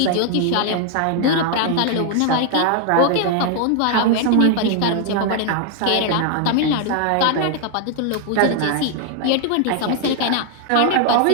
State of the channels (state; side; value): different; both; correlation 0.00